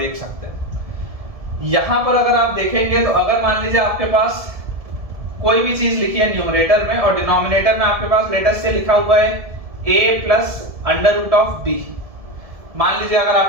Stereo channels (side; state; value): left; late; 1.7 ms